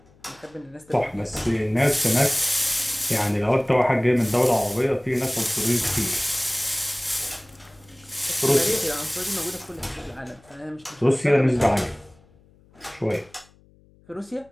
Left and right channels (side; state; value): left; noise; hum, 29 dB below the sound